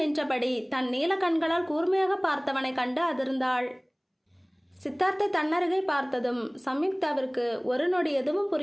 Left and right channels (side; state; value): both; identical; correlation 1.00